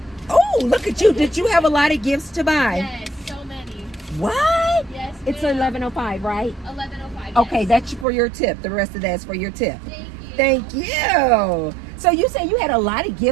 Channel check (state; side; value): drops out; left; at 8.1 s